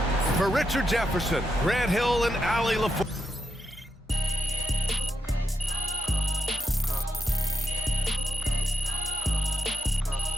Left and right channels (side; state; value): both; normal; correlation 0.85